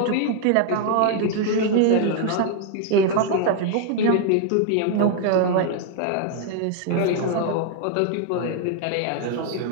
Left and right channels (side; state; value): both; different; correlation 0.00